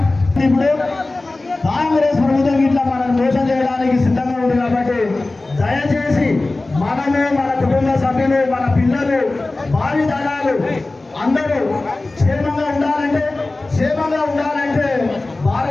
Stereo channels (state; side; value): quieter; right; 3.1 dB